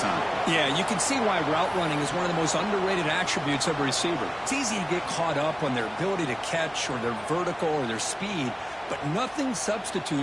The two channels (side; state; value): both; identical; correlation 1.00